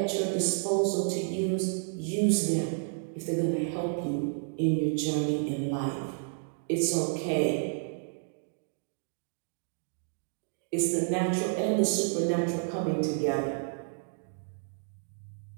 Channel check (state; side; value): silent; left; digital silence